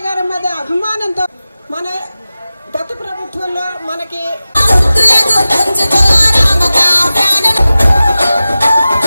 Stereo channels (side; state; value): both; inverted; correlation -0.95